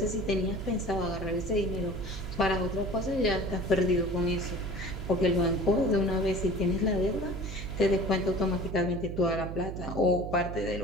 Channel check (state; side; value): noise; right; hum, 7 dB below the sound